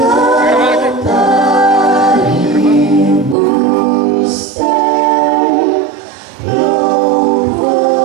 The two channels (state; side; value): drops out; left; at 3.4 s